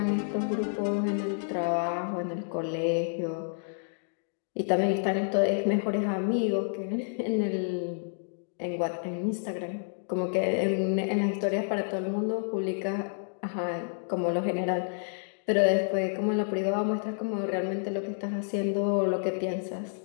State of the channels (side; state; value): right; silent; digital silence